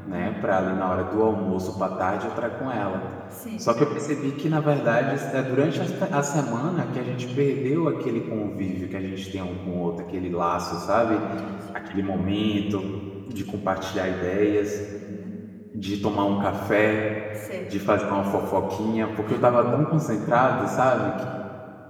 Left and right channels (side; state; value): both; identical; correlation 1.00